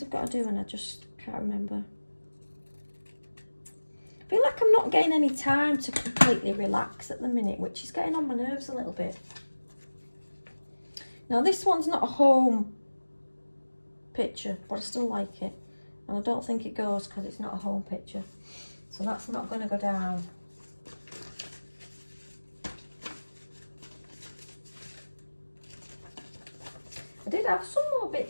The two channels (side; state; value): both; inverted; correlation -1.00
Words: I've got to do and I just can't remember. I feel like I'm not getting any time to completely relax at the minute, which is getting on my nerves a little bit. Now this one's not a home picture, but I still like it. And I don't think it goes because it's not a home picture. So that's not going to go down. I did have some more